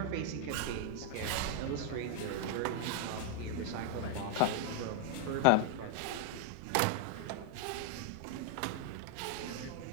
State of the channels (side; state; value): both; different; correlation 0.00